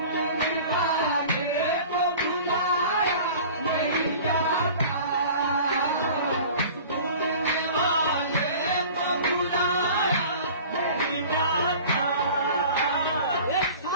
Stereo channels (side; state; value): both; inverted; correlation -0.42